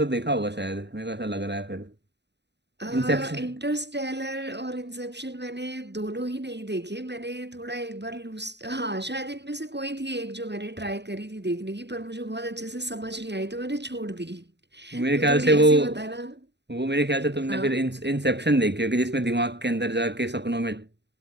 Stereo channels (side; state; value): left; late; 0.50 ms